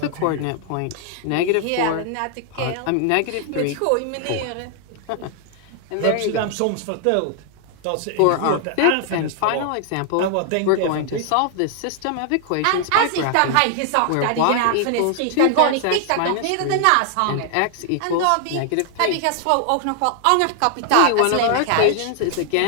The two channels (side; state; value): both; different; correlation 0.00